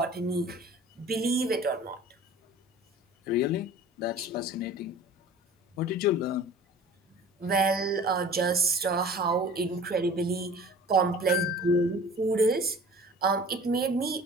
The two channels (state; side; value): normal; both; correlation 0.43